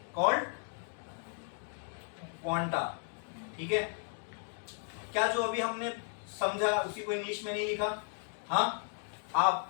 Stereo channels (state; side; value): silent; right; 55 dB below the other